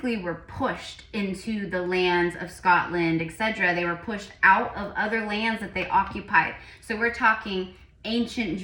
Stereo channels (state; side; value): identical; both; correlation 1.00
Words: were pushed into the lands of Scotland, etc. They were pushed out of other lands that they occupied. So we're talking ancient